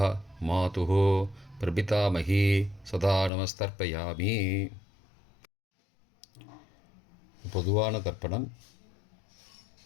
மாதுகு பிரபிதாமகி சதா நமஸ்தர்ப்பயாமி. பொதுவான தர்ப்பணம்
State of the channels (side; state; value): right; drops out; at 3.3 s